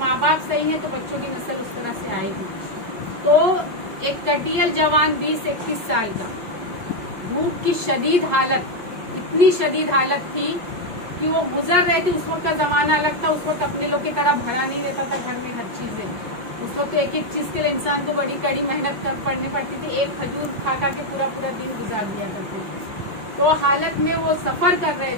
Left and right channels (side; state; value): left; late; 5.6 ms